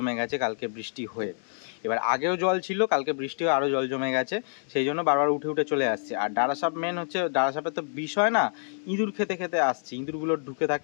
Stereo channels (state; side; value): silent; right; digital silence